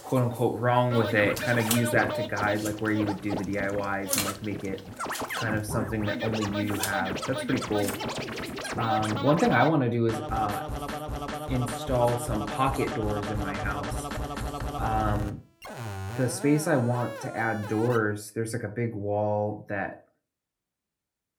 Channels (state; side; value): identical; both; correlation 1.00